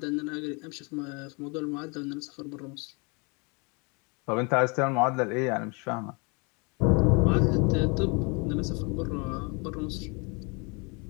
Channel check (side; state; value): right; quieter; 31.2 dB